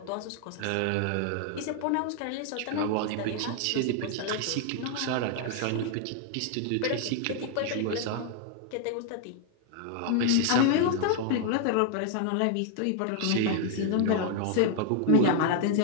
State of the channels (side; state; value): both; different; correlation 0.00